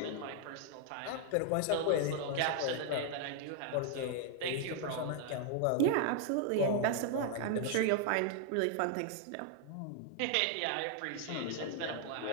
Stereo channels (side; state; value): both; different; correlation 0.00